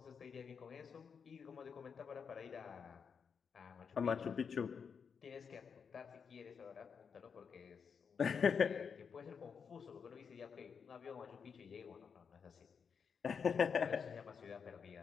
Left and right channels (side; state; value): right; quieter; 6.3 dB